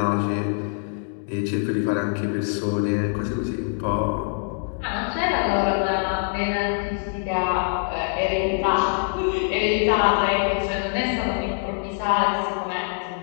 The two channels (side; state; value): right; silent; 57 dB below the other